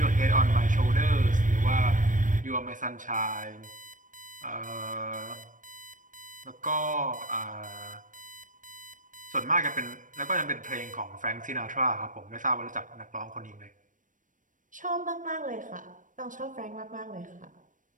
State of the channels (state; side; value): late; left; 0.38 ms